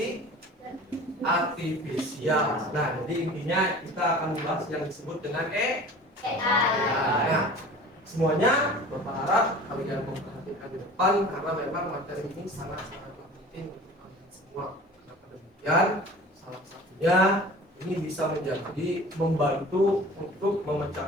artifisial. Nah, jadi intinya kita akan membahas yang disebut dengan AI. Nah, semuanya berharap kalian memperhatikan di depan karena memang materi ini sangat-sangat penting untuk kalian semua. Kenapa demikian? Salah satunya ini bisa menjadi membantu untuk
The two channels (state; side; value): normal; both; correlation 0.42